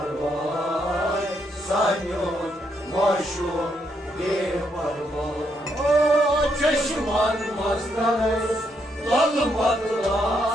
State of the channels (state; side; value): normal; both; correlation 0.76